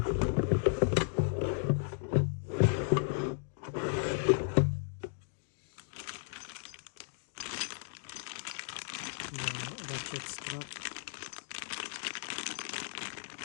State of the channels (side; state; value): right; silent; digital silence